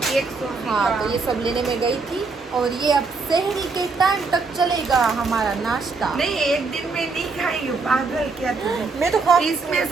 केक हाँ, तो ये सब लेने में गई थी। और ये अब शहरी के टाइम तक चलेगा हमारा नाश्ता। नहीं, एक दिन में नहीं खाई हूँ, पागल क्या तुम? मैं तो खा, इसमें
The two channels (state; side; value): quieter; left; 4.2 dB